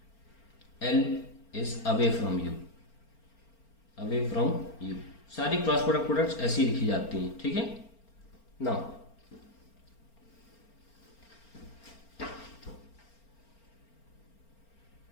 L is away from you। सारी क्रॉस प्रोडक्ट्स ऐसी लिखी जाती हैं। ठीक है, now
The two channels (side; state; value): right; late; 4.4 ms